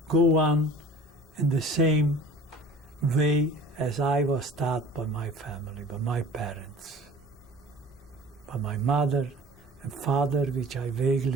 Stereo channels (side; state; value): both; normal; correlation 0.44